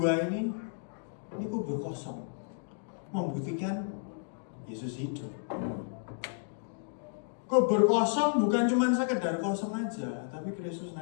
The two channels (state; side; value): silent; right; digital silence